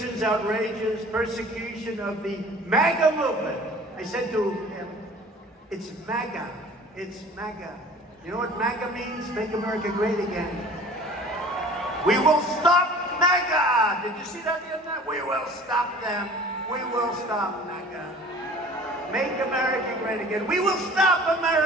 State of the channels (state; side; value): normal; both; correlation 0.46